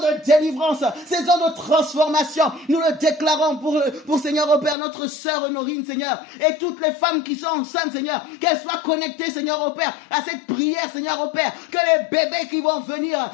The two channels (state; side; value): drops out; right; at 4.8 s